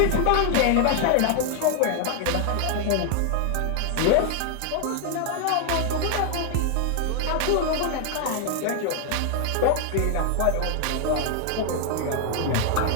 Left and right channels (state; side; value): different; both; correlation 0.00